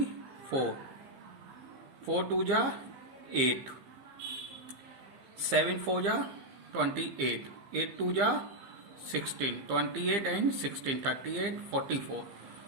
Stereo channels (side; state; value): left; late; 15 ms